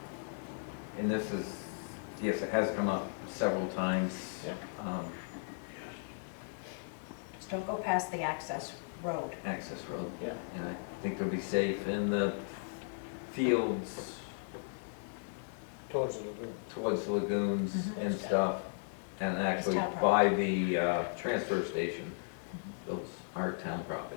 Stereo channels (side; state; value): right; silent; digital silence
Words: And this is, yes, it has come up several times. Yeah. Just don't go past the access road. Access road. Yeah. And I think they'll be safe in the fields Towards the lagoon. towards the lagoons Mhm. and stuff. And actually town by the transfer station, those are town